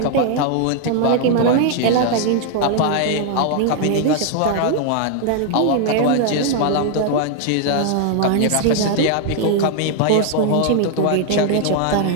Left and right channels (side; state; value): both; different; correlation 0.00